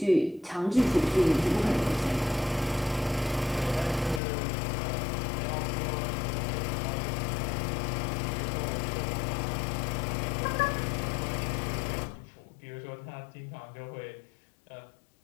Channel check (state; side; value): drops out; right; at 4.2 s